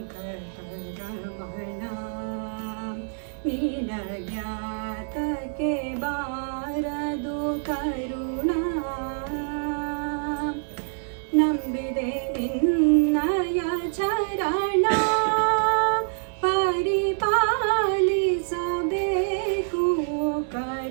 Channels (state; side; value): silent; left; digital silence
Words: ನಿನಗ್ಯಾತಕ್ಕೆ ಬಾರದು ಕರುಣ, ನಂಬಿದೆ ನಿನ್ನಯ ಚರಣ, ಪರಿಪಾಲಿಸಬೇಕು